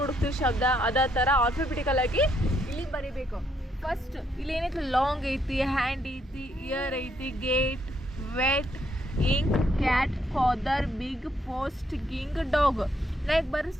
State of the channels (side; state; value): both; normal; correlation 0.74